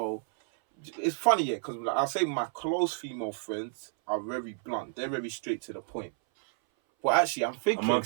it's funny, yeah, because like, I'll say my close female friends are very blunt. They're very straight to the point. But actually, I'm thinking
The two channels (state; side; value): silent; left; 58 dB below the other